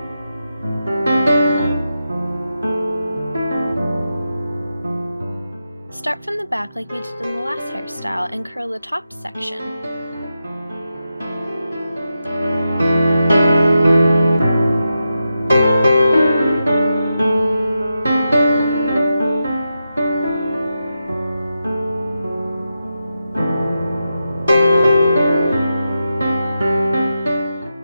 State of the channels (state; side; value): inverted; both; correlation -0.89